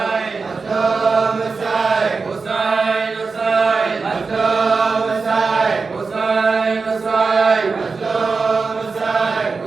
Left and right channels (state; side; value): quieter; left; 4.5 dB